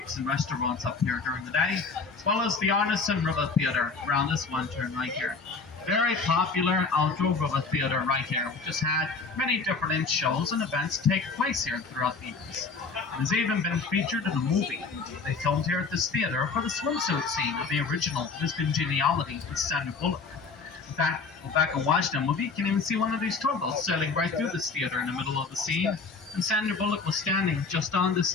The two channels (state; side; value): quieter; right; 4.5 dB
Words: and restaurants up here during the day, as well as the Arneson River Theatre around this one turn right here. Very popular outdoor river theatre right here, which has had many different shows and events take place here throughout the years. It has even been featured in a movie they filmed here at this theatre for the swimsuit scene of the original Miss Congeniality with Sandra Bullock. In fact, go back and watch the movie, you can even see one of these tugboats sailing right through this theater in the middle of the scene. And Sandra Bullock was standing just on the